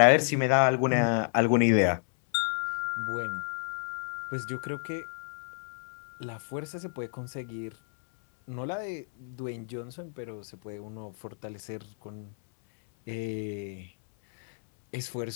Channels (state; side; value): silent; right; 58 dB below the other